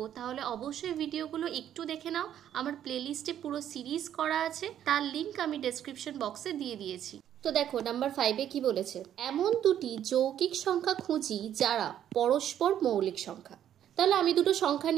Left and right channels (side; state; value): left; quieter; 10.5 dB